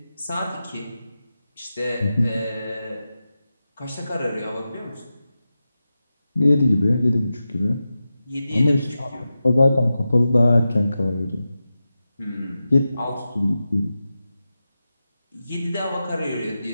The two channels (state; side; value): inverted; both; correlation -0.92